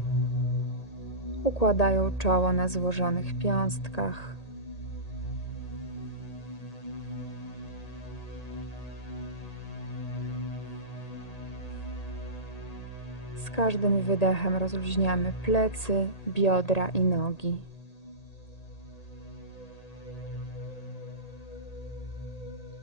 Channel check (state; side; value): late; right; 1.8 ms